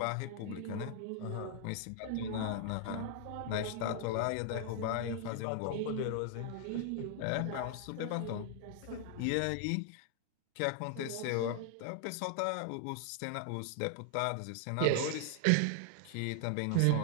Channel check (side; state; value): both; different; correlation 0.00